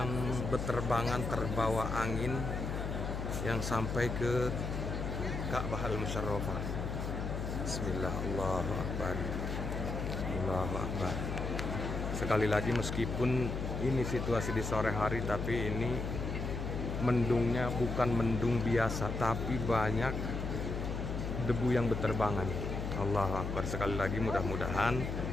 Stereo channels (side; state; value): left; noise; hum, 3 dB below the sound